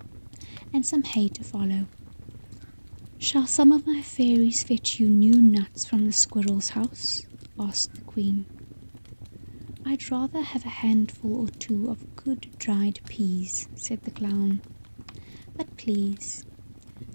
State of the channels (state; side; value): inverted; both; correlation -1.00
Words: "and some hay to follow." "Shall some of my fairies fetch you new nuts from the squirrel's house?" asked the queen. "I'd rather have a handful or 2 of good dried peas," said the clown. "But please,